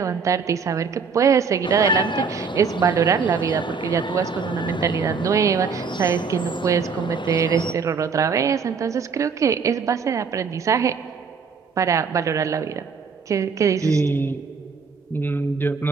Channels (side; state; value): left; quieter; 5.6 dB